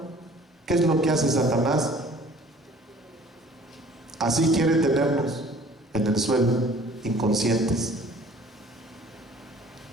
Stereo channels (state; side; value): normal; both; correlation 0.51